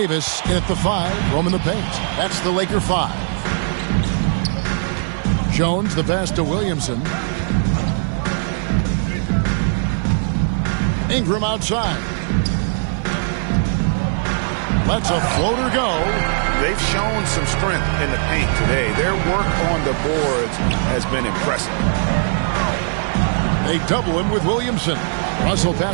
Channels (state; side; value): silent; left; 57 dB below the other